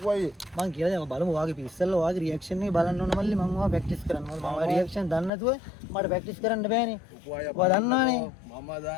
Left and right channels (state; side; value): drops out; right; at 5.3 s